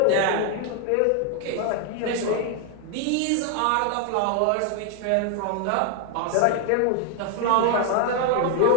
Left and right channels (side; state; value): both; different; correlation 0.00